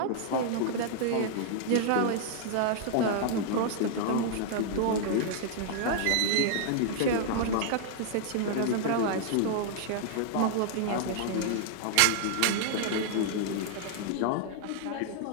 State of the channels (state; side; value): different; both; correlation -0.01